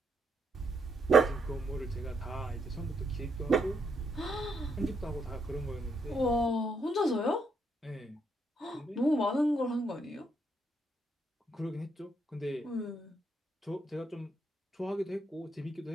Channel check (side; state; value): both; normal; correlation 0.76